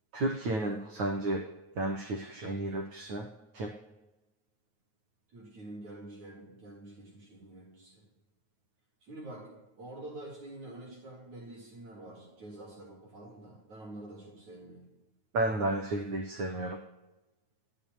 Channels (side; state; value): left; late; 9.3 ms